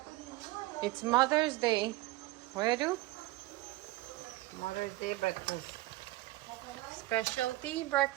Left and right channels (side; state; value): left; quieter; 18.6 dB